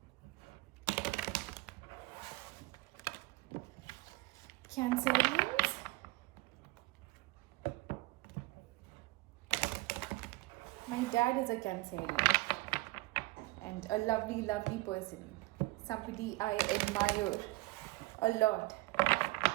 Cancerians. My dad is a Cancerian and a lovely, lovely person. Somebody I admire a lot.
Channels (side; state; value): left; quieter; 21.0 dB